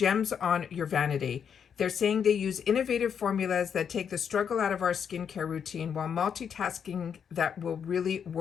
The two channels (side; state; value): right; quieter; 7.5 dB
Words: on your vanity. They're saying they use innovative formulas that take the struggle out of our skincare routine while multitasking that will really